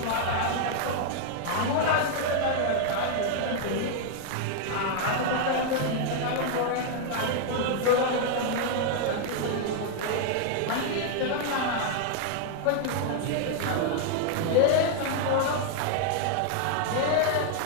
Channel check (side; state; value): both; different; correlation -0.01